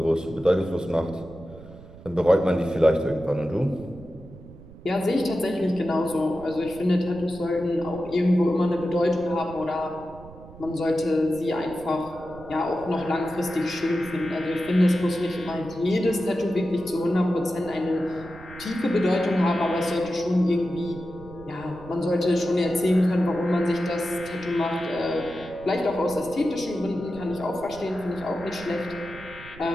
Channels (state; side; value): noise; right; rumble, 18 dB below the sound